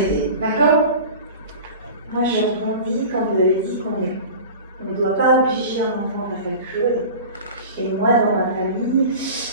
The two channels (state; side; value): inverted; both; correlation -0.36